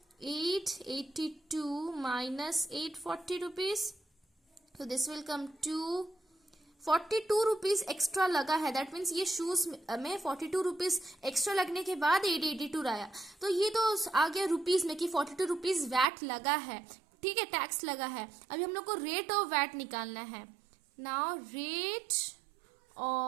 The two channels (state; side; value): drops out; left; at 16.1 s